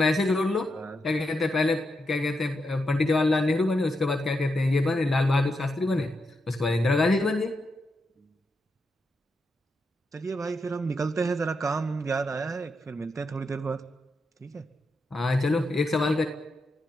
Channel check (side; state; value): both; normal; correlation 0.84